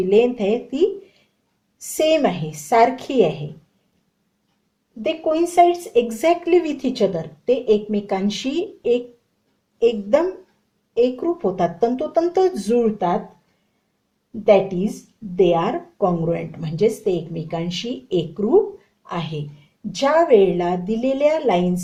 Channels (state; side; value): identical; both; correlation 1.00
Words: लेंथ आहे ती सेम आहे, सारखी आहे. दे coincides exactly with each other, ते एकमेकांशी एकदम एकरूप होतात, तंतोतंत जुळतात. That is they are congruent, म्हणजेच ते एकमेकांशी एकरूप आहे. ज्या वेळेला दिलेल्या लाईन